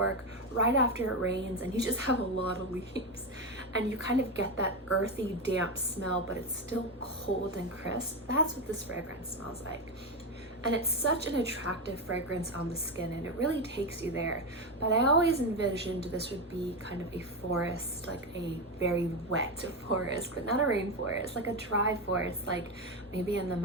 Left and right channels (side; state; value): both; normal; correlation 0.13